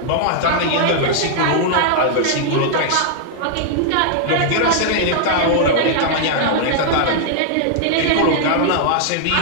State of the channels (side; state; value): both; different; correlation -0.01